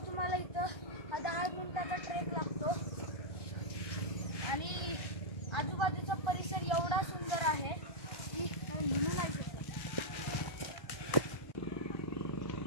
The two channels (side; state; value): right; late; 1.3 ms